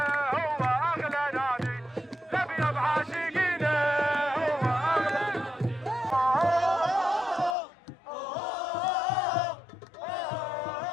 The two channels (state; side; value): drops out; right; at 7.6 s